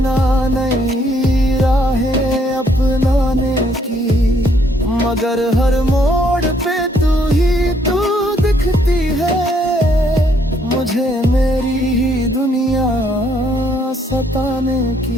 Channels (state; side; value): normal; both; correlation 0.69